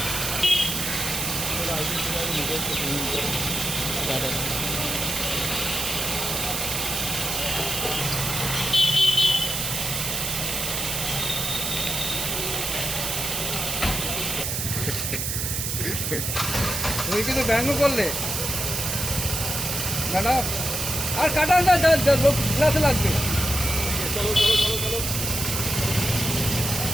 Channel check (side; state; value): right; noise; hiss, 1 dB below the sound